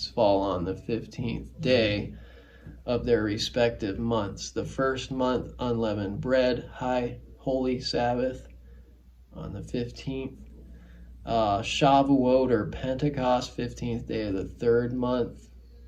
fall on the 15th day of their respective months. The first month, unleavened bread, high holy Sabbath on the 15th. Shavuot or Pentecost, 15th day of the third month.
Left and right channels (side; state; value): both; identical; correlation 1.00